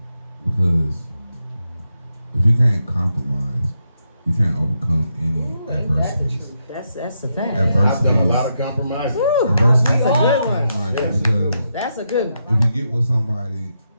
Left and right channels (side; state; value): both; inverted; correlation -0.83